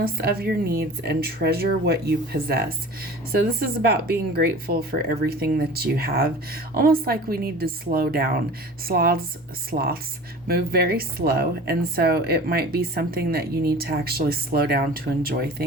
of your needs and treasure what you possess. So this is about being grateful for everything that you have. Almost like we need to slow down. Sloths move very slow, and so it might be something that you need to actually slow down to enjoy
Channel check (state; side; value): normal; both; correlation 0.40